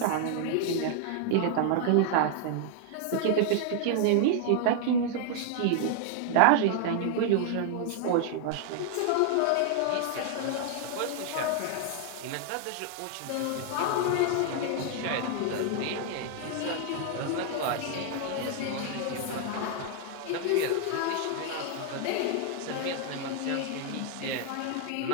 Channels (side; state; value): both; different; correlation 0.00